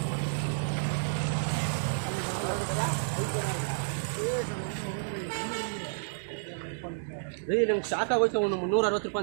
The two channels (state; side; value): silent; left; digital silence